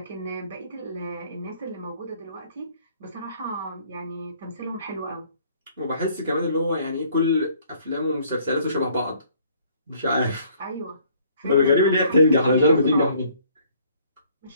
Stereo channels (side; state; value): both; inverted; correlation -0.60